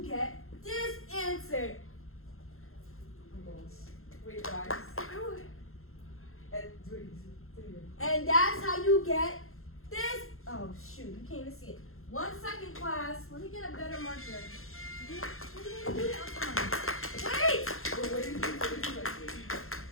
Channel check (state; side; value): late; right; 0.62 ms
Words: get this answer. Oh my gosh. Wait, guys. And wait, say it again. And that's how you get this. Oh, shoot. You can't even see it. 1 second, class. Let me get a better marker. Wait!